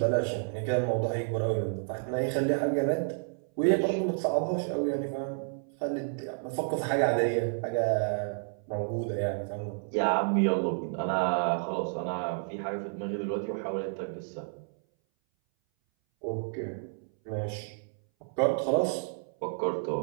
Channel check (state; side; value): silent; left; 58 dB below the other